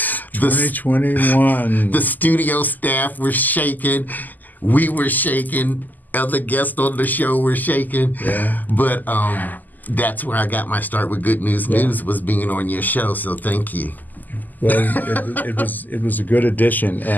2021. The studio staff were shaking. We were shaking. Other guests on the show were shaking. Yeah. But that's where I got my start with Good News News, was being on your show, so thank you. Well, it was a good addition,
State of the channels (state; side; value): late; right; 0.084 ms